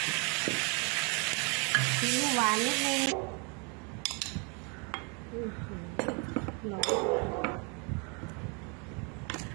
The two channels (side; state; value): left; quieter; 34.5 dB